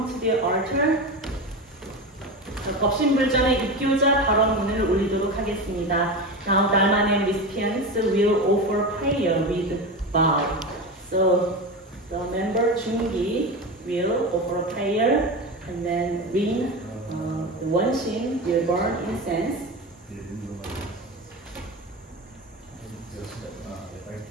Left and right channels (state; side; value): normal; both; correlation 0.23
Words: to the altar. 법신불전의 입교자 발언문을 올리도록 하겠습니다. Now Dharma name recipients will offer prayer with vow. So the member Jungi will offer prayer, and then Rin Wonshin will burn incense.